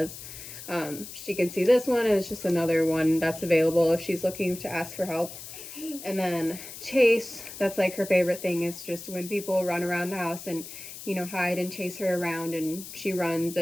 she can see this one, and it's just another one that's available if she's looking to ask for help. And then chase, that's like her favorite thing, is just when people run around the house and hide and chase her around, and she runs,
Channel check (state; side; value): noise; left; hiss, 12 dB below the sound